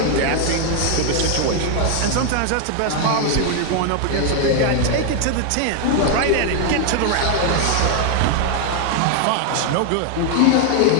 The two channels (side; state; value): both; different; correlation 0.01